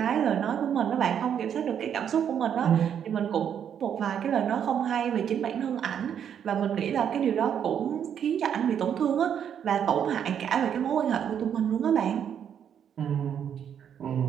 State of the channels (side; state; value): left; quieter; 8.7 dB